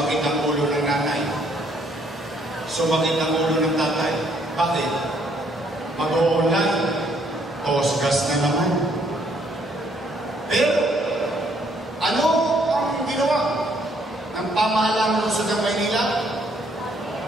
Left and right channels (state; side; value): normal; both; correlation 0.67